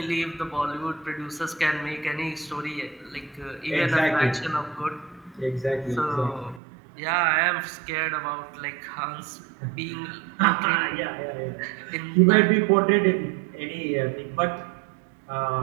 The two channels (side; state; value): left; drops out; at 6.6 s